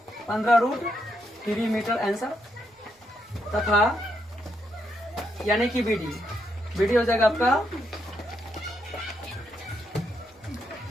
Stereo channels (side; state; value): both; normal; correlation 0.79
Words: 15√3 मीटर आंसर, तथा यानी कि BD हो जाएगा आपका